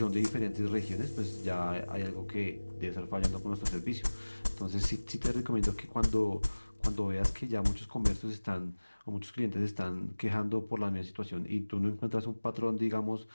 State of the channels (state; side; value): inverted; both; correlation -1.00